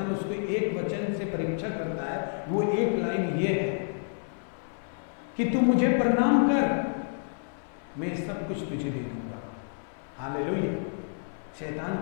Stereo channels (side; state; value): right; silent; 56 dB below the other